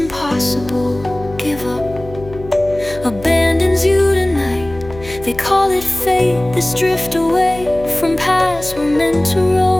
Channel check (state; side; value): noise; left; hum, 15 dB below the sound